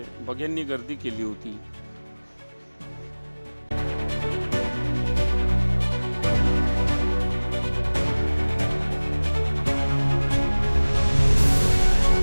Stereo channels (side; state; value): both; inverted; correlation -1.00